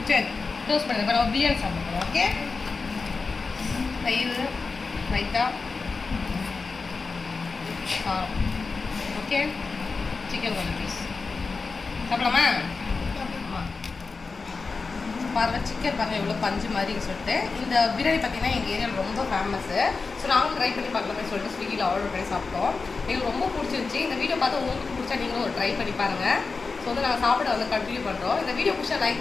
சரி க்ளோஸ் பண்ணுங்க. இப்போ நம்ம பிரியாணி சாப்பிடுறோம். ஓகே, தயிர் ரைத்தா ஓகே, சிக்கன் கொஞ்சம் பீஸ் சாப்பிடலாமா? பாருங்கள் சிக்கன் பாருங்கள் எவ்வளோ பஞ்சு மாதிரி சொல்லிட்டு. இந்த பிரியாணி பார்த்தீங்கன்னா எங்கள் ஏரியாவில் ரொம்ப ஃபேமஸ்ஸு. ஸோ நாங்களும் ட்ரை பண்ணி பார்க்கலாமே சொல்லிட்டு ஸ்விக்கியில் ஆர்டர் பண்ணி சாப்பிட்டோம். எங்களுக்கு ரொம்ப பிடிச்சிருந்துச்சி. இந்த வீடியோ பார்த்து உங்களுக்கு பிடிச்சா நீங்களும் ஒரு ட்ரை பண்ணி பாருங்கள். ஸோ வந்து நாங்கள் சாப்பிட வந்து கண்டினியூ பண்ணுறோம். இந்த வீடியோ பிடிச்சா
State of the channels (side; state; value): right; quieter; 4.3 dB